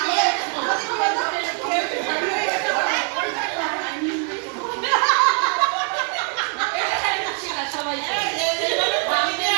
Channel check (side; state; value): left; quieter; 37.9 dB